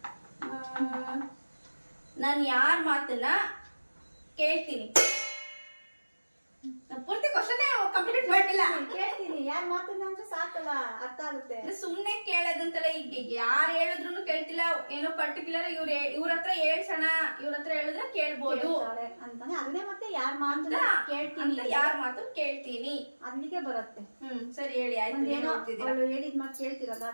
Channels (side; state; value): both; inverted; correlation -1.00